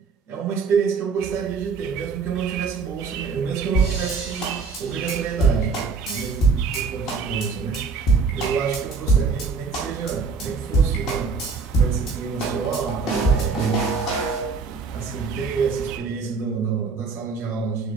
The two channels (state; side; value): quieter; left; 4.8 dB